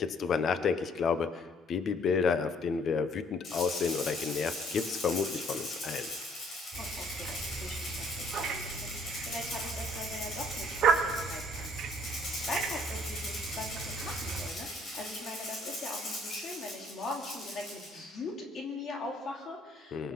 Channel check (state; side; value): normal; both; correlation 0.62